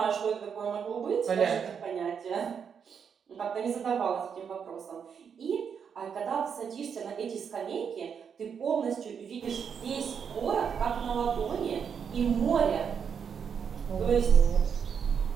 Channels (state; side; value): quieter; left; 7.0 dB